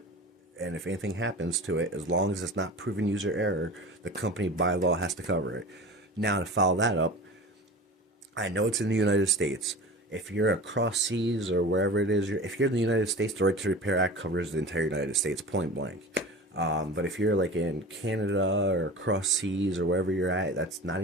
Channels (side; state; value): both; normal; correlation 0.35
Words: And if anything happens to it, as long as it's not proven user error, the company by law has to cover it. Now, to follow that up, I know it's in the United States. If you're across seas or wherever it is, if you're in the United States, the Right to Repair Act covers the entire United States, point blank. But if you're like in Canada or across seas or wherever you're at, that's not